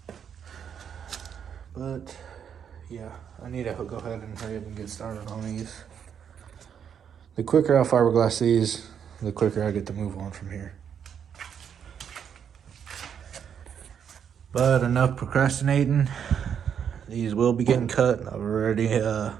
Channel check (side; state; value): left; quieter; 8.0 dB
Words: But yeah, I need to go ahead and hurry up and get started on these. The quicker I fiberglass these, the quicker I get to move on from here. But enough procrastinating. These will be getting cut. I've already